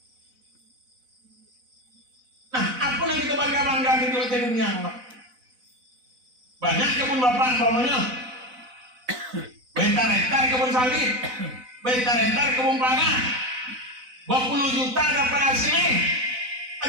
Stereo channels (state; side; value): late; left; 4.0 ms